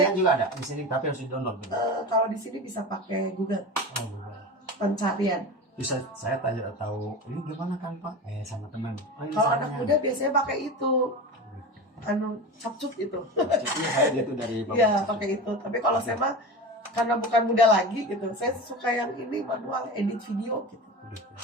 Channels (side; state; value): both; normal; correlation 0.28